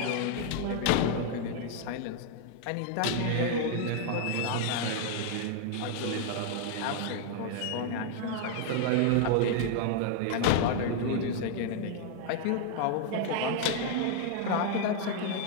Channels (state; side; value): different; both; correlation 0.00